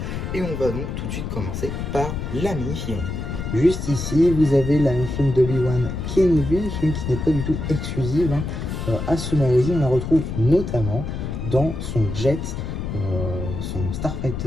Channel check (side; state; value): left; noise; rumble, 5 dB below the sound